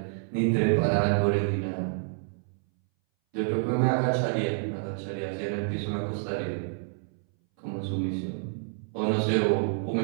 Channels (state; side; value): silent; left; 59 dB below the other